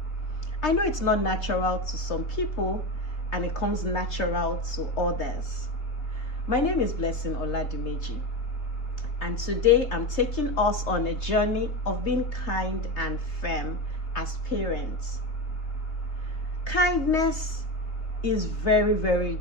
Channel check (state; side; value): late; right; 3.3 ms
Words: I know it's not natural to some people, and it comes natural to others. My name is Blessing Oladimeji, and today I'm taking us on a journey of being kind and firm as parents. Kindness is very, very